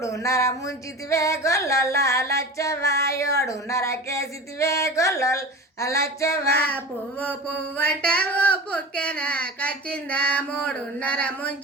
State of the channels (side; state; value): both; normal; correlation 0.32